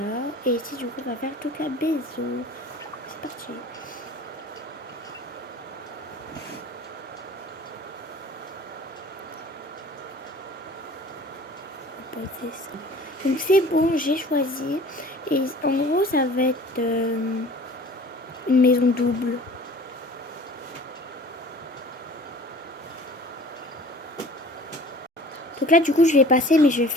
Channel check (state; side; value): normal; both; correlation 0.46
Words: Et ici du coup on va faire Toka Bezo. C'est parti. On va poser ça. Donc c'est bon, j'ai choisi. Et en gros ça va être une maison double. Donc là du coup je vais passer mais je vais